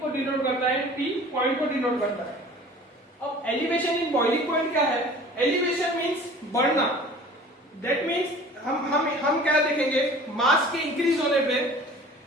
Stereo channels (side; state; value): both; normal; correlation 0.45